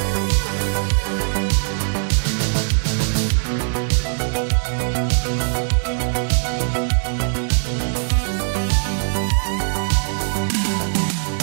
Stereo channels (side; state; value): left; silent; 63 dB below the other